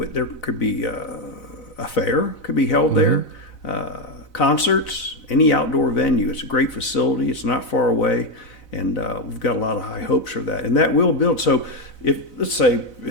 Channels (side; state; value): right; late; 4.0 ms